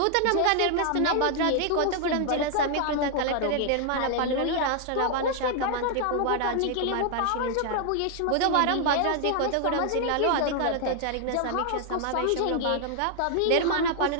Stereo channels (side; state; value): both; different; correlation 0.00